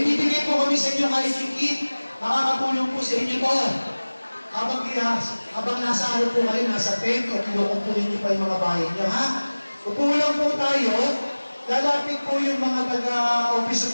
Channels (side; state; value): both; inverted; correlation -1.00